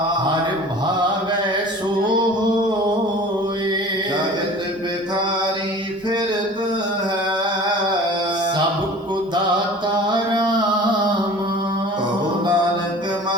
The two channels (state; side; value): normal; both; correlation 0.43